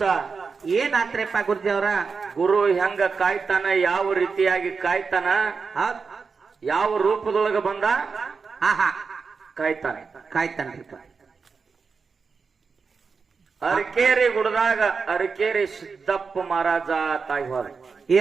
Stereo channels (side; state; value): left; quieter; 5.1 dB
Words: ಏನಾತ್ರಿಪ್ಪ ಗುರುಜಿ ಅವ್ರ? ಗುರು ಹೆಂಗ ಕಾಯ್ತಾನ, ಯಾವ ರೀತಿಯಾಗಿ ಕಾಯ್ತಾನ, ಯಾವ ರೂಪದೊಳಗ ಬಂದ ಕಾಯ್ತಾನ್ರಿಪ್ಪ. ಅರಕೇರಿ ಗುಡ್ದಾಗ ಅರಕೇರಿ ಸಿದ್ದಪ್ಪ ಮಹಾರಾಜ ತಾಯಿ ಹೋದ. ಈ